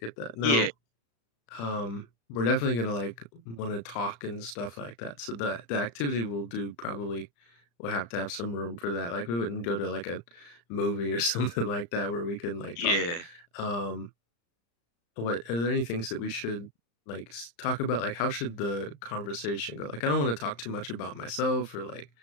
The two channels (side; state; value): right; late; 35 ms